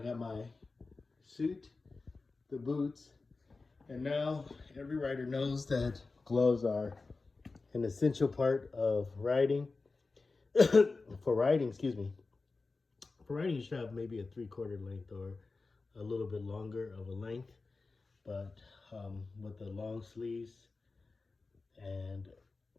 my suit, the boots, and now every rider knows that gloves are an essential part of riding. For riding, excuse me. For riding, you should have maybe a 3/4 length or a little bit longer of a length, but with the long sleeves, and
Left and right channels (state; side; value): quieter; right; 3.8 dB